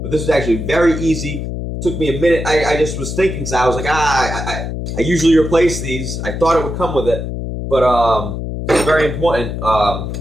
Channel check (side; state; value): left; noise; hum, 5 dB below the sound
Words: But this is actually very easy. It took me a minute. I just was thinking, so I was like, I usually replace these. I thought it would come with it, but it's very important.